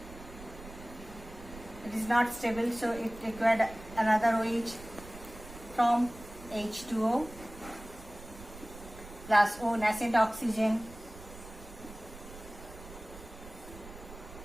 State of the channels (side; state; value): right; noise; rumble, 16 dB below the sound